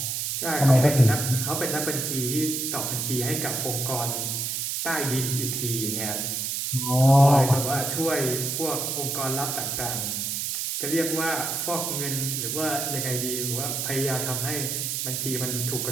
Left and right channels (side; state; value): right; noise; hiss, 1 dB below the sound